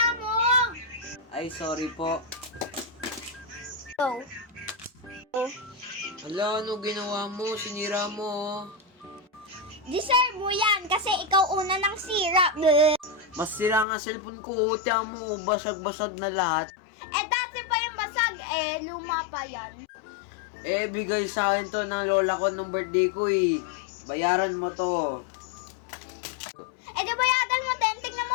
mo. Ay, sorry po. Oh. Hala, ano ginawa mo? Sinira mo, oh. Deserve mo yan kasi ikaw una ng sira. Bleh. Mas sira nga cellphone ko. Tiyan mo, basag-basag na lahat. Eh, dati pa yung basag. Luma pa yan. Eh, bigay sa akin to ng lola ko nung birthday ko, eh. Bayaran mo to. Di bayadan mo din. Tingnan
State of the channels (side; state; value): right; drops out; at 13.9 s